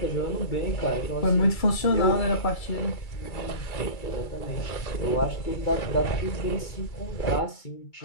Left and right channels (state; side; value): late; right; 2.3 ms